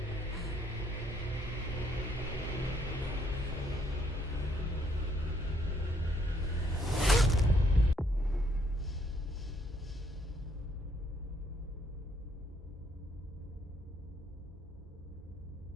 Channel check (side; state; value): both; normal; correlation 0.70